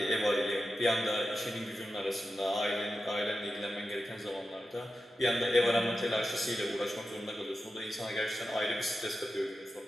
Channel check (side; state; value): both; normal; correlation 0.91